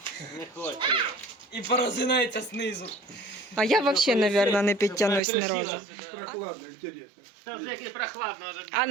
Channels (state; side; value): drops out; left; at 5.2 s